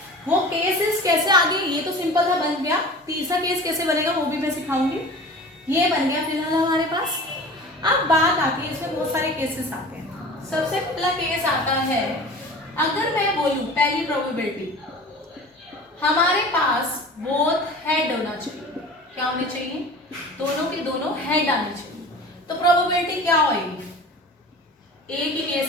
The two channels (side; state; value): both; normal; correlation 0.39